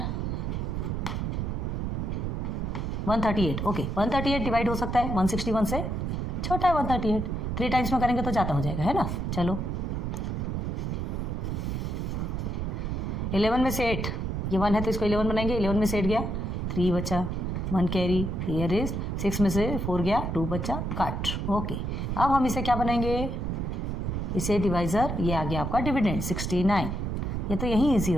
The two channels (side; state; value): right; noise; rumble, 2 dB below the sound